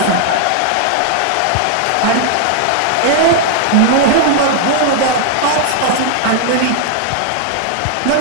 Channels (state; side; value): different; both; correlation 0.00